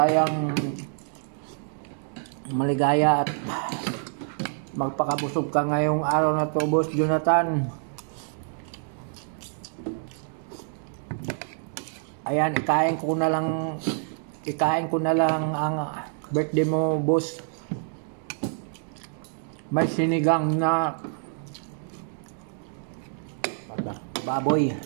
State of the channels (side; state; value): left; silent; digital silence